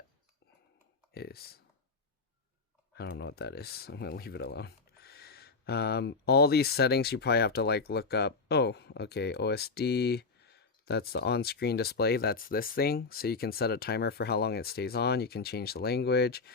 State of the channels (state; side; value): quieter; right; 4.4 dB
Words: is. I don't know what that is. I'm gonna leave it alone. All these settings you probably have to like look up. Oh, okay, OSD. That's the on-screen display. That's this thing. So you can set a timer for how long it stays on. You can change the language.